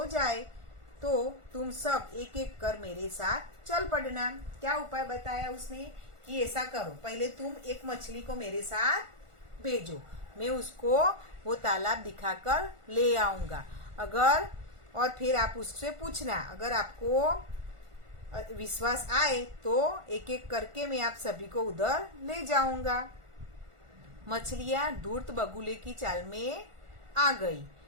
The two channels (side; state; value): left; late; 1.4 ms